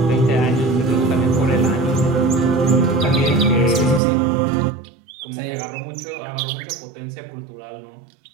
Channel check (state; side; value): drops out; left; at 4.0 s